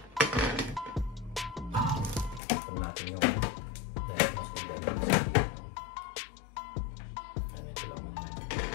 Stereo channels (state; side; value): drops out; right; at 2.4 s